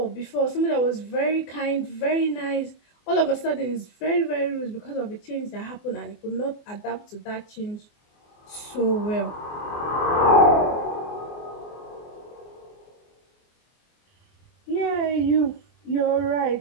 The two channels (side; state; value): right; late; 24 ms